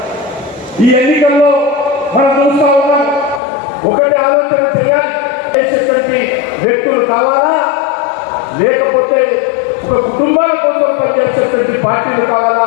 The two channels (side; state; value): right; drops out; at 3.4 s